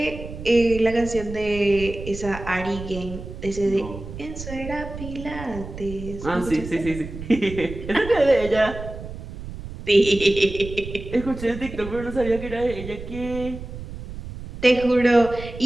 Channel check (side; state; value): right; noise; rumble, 11 dB below the sound